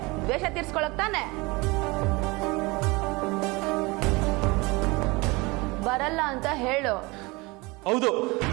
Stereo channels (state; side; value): quieter; left; 24.6 dB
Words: ದ್ವೇಷ ತೀರ್ಸ್ಕೊಳಕ್ ತಾನೆ? ಬರಲ್ಲ ಅಂತ ಹೇಳು. ಹೌದು,